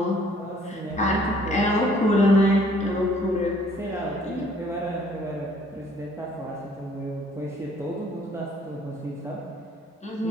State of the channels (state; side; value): normal; both; correlation 0.60